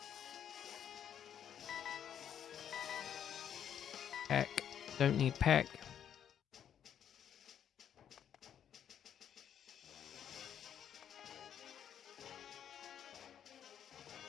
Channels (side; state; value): right; quieter; 9.2 dB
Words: Peck. Don't need Peck.